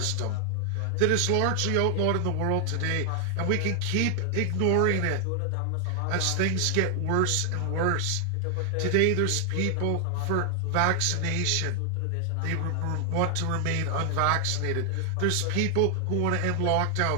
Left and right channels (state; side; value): different; both; correlation 0.00